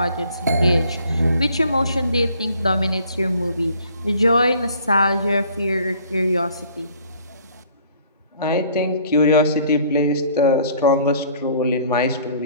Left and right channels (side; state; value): both; inverted; correlation -0.56